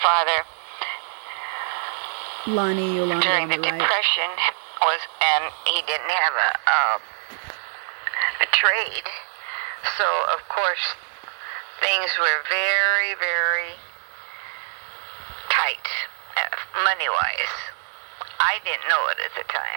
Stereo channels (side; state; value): left; silent; 59 dB below the other